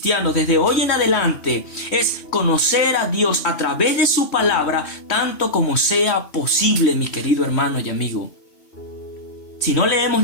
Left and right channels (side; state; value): right; late; 2.8 ms